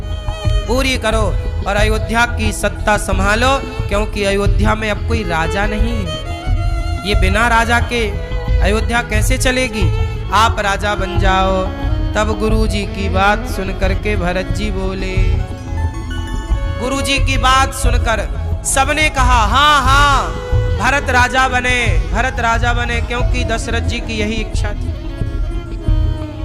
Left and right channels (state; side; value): identical; both; correlation 1.00